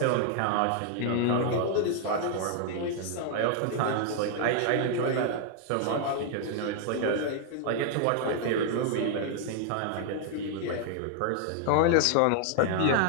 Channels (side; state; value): both; different; correlation 0.00